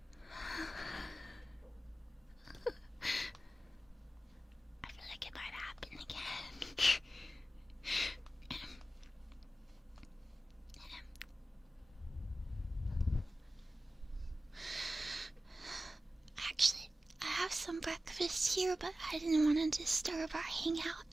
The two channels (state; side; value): normal; both; correlation 0.94